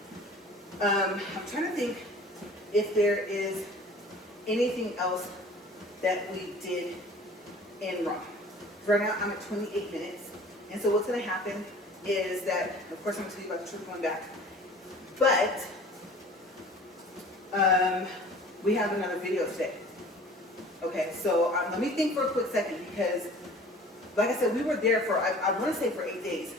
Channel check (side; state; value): both; normal; correlation 0.46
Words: I'm trying to think if there is anything else that we did in Rome. Right now, I'm at 28 minutes, and so what's going to happen is that, of course, I'm going to tell you about the trip going back, but we have another video today. Okay, so let me think for a quick second, because, like I said, we were there for, I want to say for 8 days,